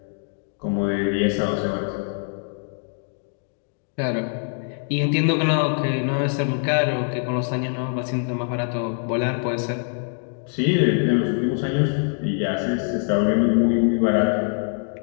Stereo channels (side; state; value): right; silent; 55 dB below the other